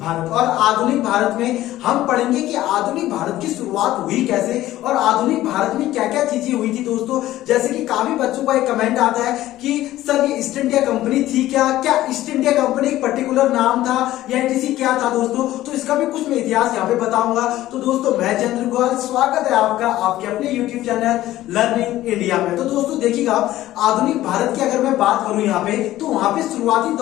भारत। और आधुनिक भारत में हम पढ़ेंगे कि आधुनिक भारत की शुरुआत हुई कैसे और आधुनिक भारत में क्या क्या चीजें हुई थी दोस्तों। जैसे कि काफी बच्चों का एक कमेंट आता है कि सर ये ईस्ट इंडिया कंपनी थी क्या ईस्ट इंडिया कंपनी एक पर्टिकुलर नाम था या एनटीसी क्या था दोस्तों? तो इसका भी कुछ मैं इतिहास यहाँ पे बताऊंगा। तो दोस्तों मैं चंद्र गोयल, स्वागत है आपका आपके अपने यूट्यूब चैनल लर्निंग इंडिया में। तो दोस्तों देखिएगा, आधुनिक भारत की अगर मैं बात करूं यहाँ पे, तो वहां पे शुरुआती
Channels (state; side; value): quieter; right; 14.9 dB